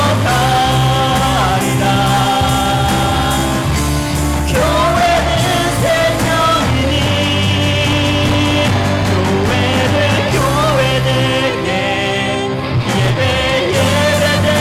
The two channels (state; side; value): identical; both; correlation 1.00